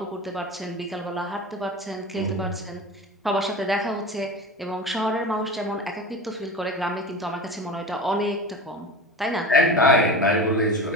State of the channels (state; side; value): normal; both; correlation 0.31